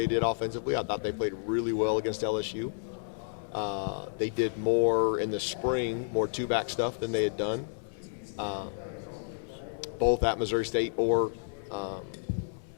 did offensively. I thought they played really well against LSU. They did more in the spring, more two-back stuff than they had done, both at Missouri State or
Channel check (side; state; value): right; silent; 57 dB below the other